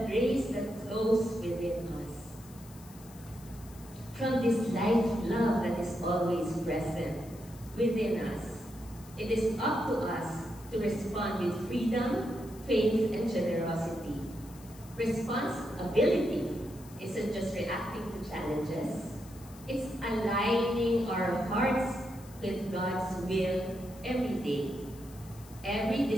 grace that flows within us. From this life love that is always present within us. It is up to us to respond with freedom, faith, and generosity. Responsibility isn't just reacting to challenges. It's aligning our hearts with God's will every day. Every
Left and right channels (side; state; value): left; noise; hiss, 22 dB below the sound